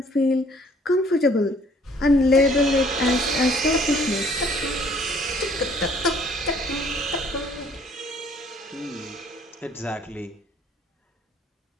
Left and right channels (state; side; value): normal; both; correlation 0.59